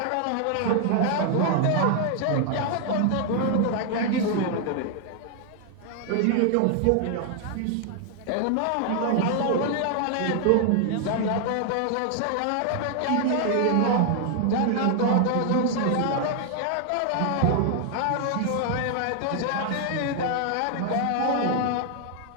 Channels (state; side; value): different; both; correlation 0.00